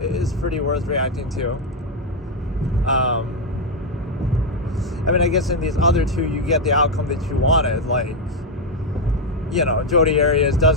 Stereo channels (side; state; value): both; normal; correlation 0.03